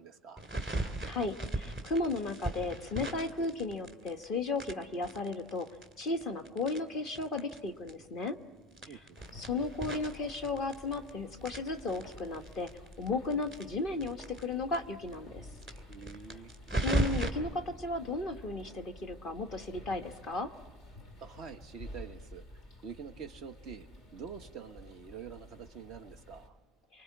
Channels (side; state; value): both; normal; correlation 0.33